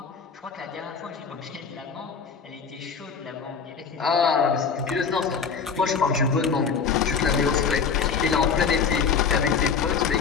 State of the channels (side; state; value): right; quieter; 6.0 dB